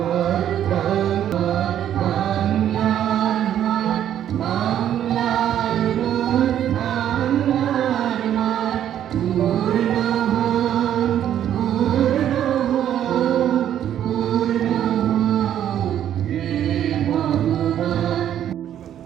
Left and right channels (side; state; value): left; quieter; 10.6 dB